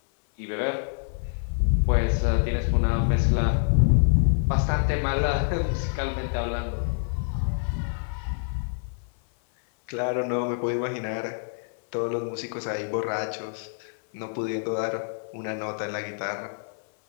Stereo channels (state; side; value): silent; right; 61 dB below the other